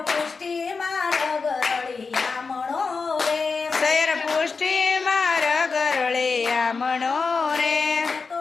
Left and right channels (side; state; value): right; quieter; 4.7 dB